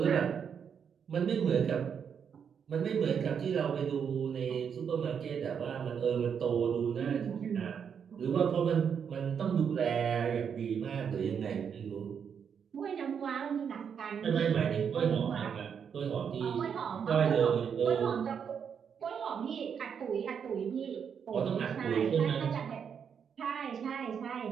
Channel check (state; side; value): quieter; left; 7.3 dB